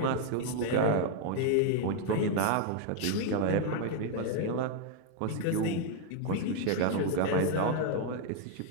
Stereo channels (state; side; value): different; both; correlation 0.00